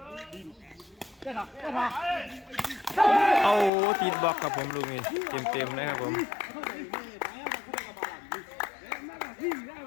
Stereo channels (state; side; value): drops out; right; at 3.7 s